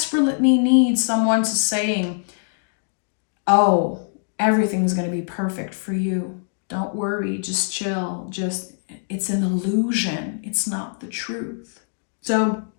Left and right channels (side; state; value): right; silent; digital silence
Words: need someone to saying, oh, everything's going to be perfect for you. Don't worry, just chill. It's an illusion. It's not the truth. So